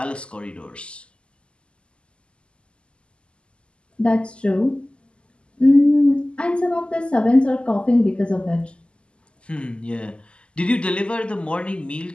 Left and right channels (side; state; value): right; late; 0.052 ms